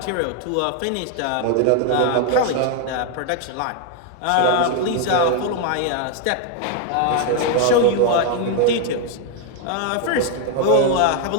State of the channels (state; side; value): different; both; correlation 0.01